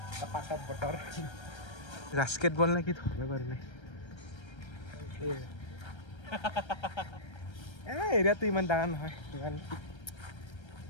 পাছত বতৰ বাস্কেটবল নে কি ধৰিব পাৰি নাই এৰিয়াটো ইমান ডাঙৰ নহয় ইমান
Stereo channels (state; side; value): late; right; 1.3 ms